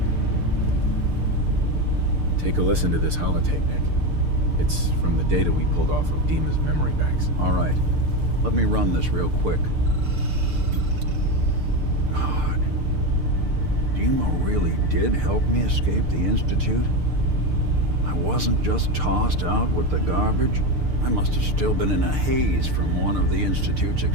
Take a listen to this holotape, Nick. It's from the data we pulled off of DiMa's memory banks. All right. Let me run this real quick. God. DiMa really did help me escape the Institute? I wasn't just tossed out with the garbage. I must have still been in a haze from one of the Institute's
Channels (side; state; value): left; late; 6.7 ms